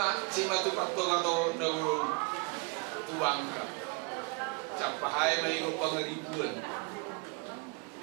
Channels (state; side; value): quieter; left; 30.7 dB